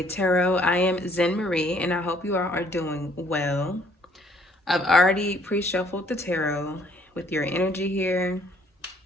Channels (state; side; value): normal; both; correlation 0.63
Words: Tarot. I am Zen Marie, and I hope you all are doing well. I've already pre-shuffled the tarot with your energy here,